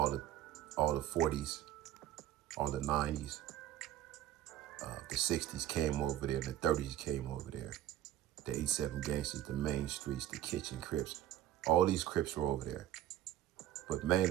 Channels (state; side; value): quieter; left; 12.6 dB